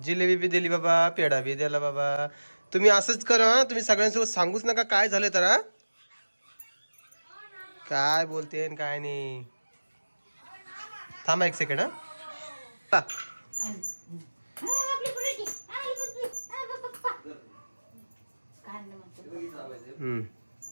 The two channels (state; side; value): inverted; both; correlation -1.00